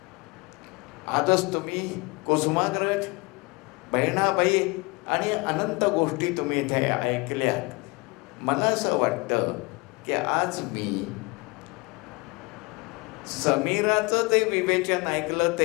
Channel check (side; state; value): right; quieter; 27.3 dB